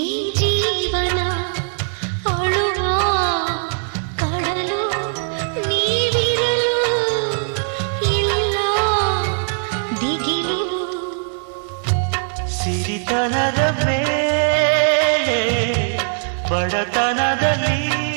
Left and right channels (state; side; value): silent; left; digital silence